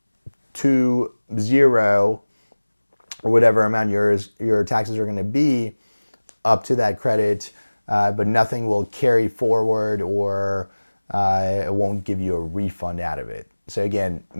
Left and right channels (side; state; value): both; inverted; correlation -1.00